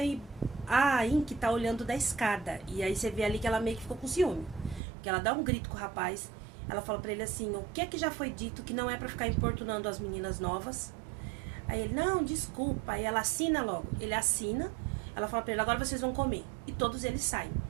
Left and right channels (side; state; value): left; drops out; at 4.8 s